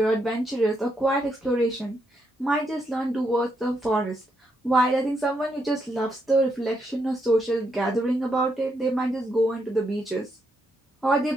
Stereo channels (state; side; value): normal; both; correlation 0.79